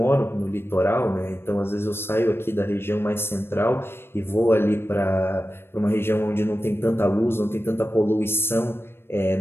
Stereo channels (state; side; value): late; right; 0.11 ms